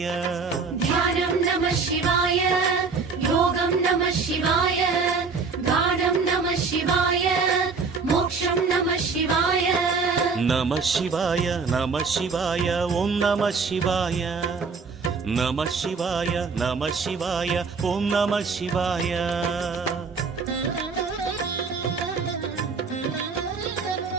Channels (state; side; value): quieter; left; 4.8 dB